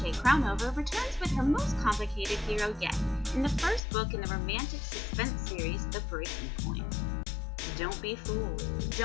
returns with her most complicated hero yet in the first book in the romantic suspense series, The Breaking Point. Don't be fooled.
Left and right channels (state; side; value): drops out; right; at 3.8 s